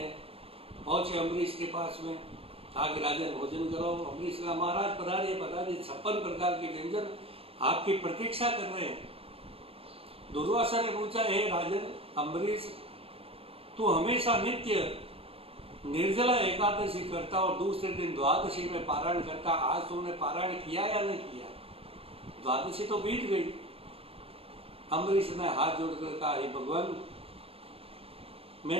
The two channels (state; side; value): late; left; 0.28 ms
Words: पहुंचे अम्बरीश के पास में, कहा कि राजन भोजन करो। अम्बरीश कहा, महाराज पधारिए पधारिए, 56 प्रकार के व्यंजन आपकी प्रतीक्षा कर रहे हैं। दुर्वासा ने पूछा, हे राजन अम्बरीश, तू हमेशा नित्य निर्जला एकादशी करता और दूसरे दिन द्वादशी में पारायण करता, आज तुमने पारायण किया या नहीं किया? द्वादशी तो बीत गई। अम्बरीश ने हाथ जोड़कर कहा, हे भगवान,